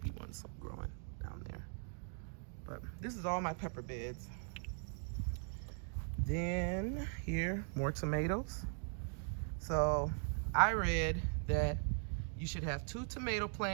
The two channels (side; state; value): left; silent; 51 dB below the other